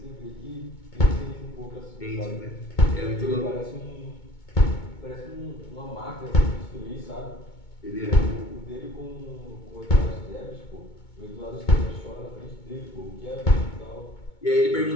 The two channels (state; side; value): late; right; 2.2 ms